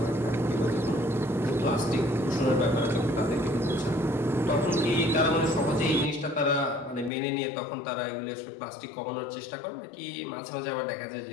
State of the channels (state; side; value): drops out; right; at 7.1 s